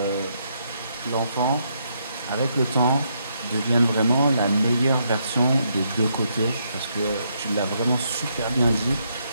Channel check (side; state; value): both; inverted; correlation -0.76